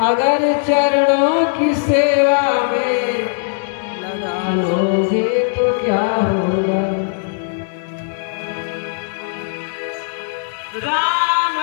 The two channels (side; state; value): right; silent; digital silence